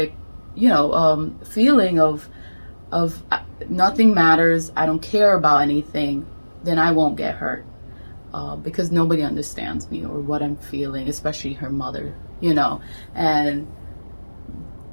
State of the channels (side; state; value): both; inverted; correlation -1.00